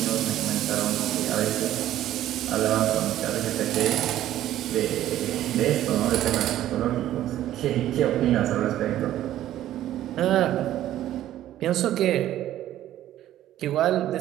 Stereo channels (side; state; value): left; quieter; 13.0 dB